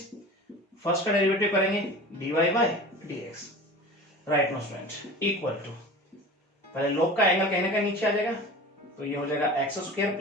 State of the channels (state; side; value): normal; both; correlation 0.37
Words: first का डेरिवेटिव करेंगे dy by dx, right no student, equal to, पहले लॉग का एंगल कहीं ना कहीं नीचे आ जाएगा, तो ये हो जाएगा x square